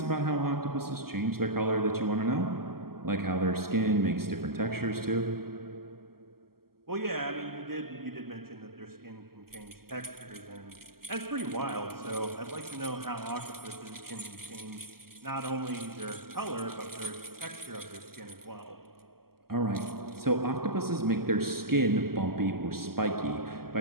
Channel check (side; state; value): left; late; 0.93 ms